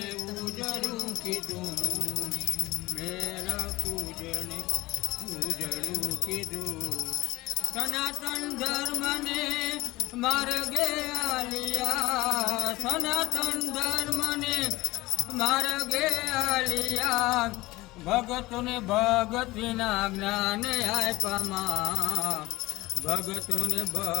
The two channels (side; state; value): right; quieter; 19.6 dB